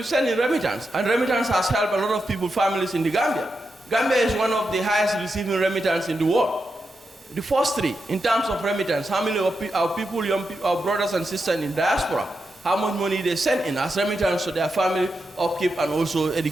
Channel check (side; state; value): both; normal; correlation 0.87